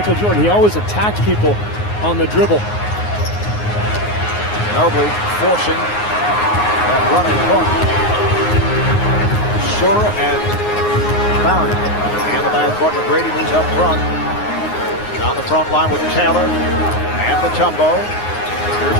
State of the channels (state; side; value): late; right; 9.6 ms